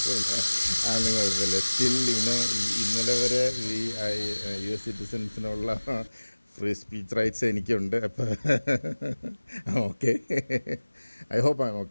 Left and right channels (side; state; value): both; inverted; correlation -1.00